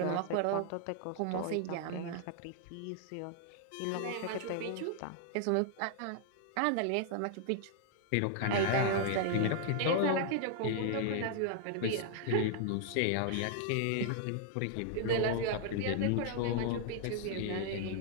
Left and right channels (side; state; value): both; different; correlation 0.00